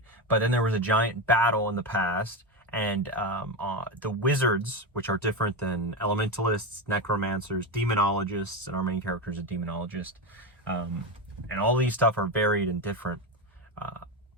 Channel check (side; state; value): both; normal; correlation 0.16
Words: But then there was a giant battle in the past, and the wizards, which are different than elementalists, necromancers, demonologists, and our main character is a demonologist, and all these stuff are varied and different,